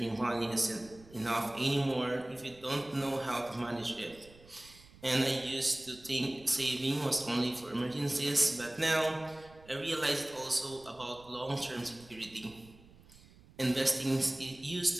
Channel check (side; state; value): right; noise; rumble, 23 dB below the sound